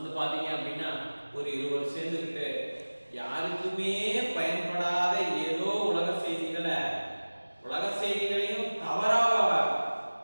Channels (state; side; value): inverted; both; correlation -1.00